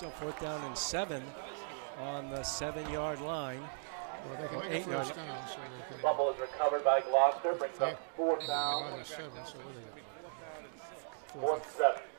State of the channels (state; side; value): silent; left; digital silence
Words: down and 7 on the 7-yard line. Well, they can Or make a 8-yard first down, so they can. Fumble is recovered by Gloucester, brings They- up 4th they're down, on the 7, so what do they got? 4th Fourth. and 7